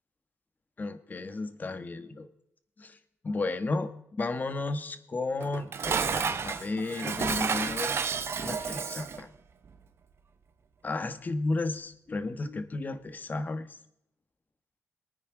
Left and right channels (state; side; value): normal; both; correlation 0.62